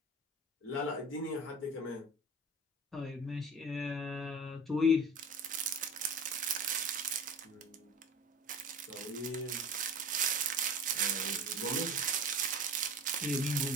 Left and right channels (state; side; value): normal; both; correlation 0.35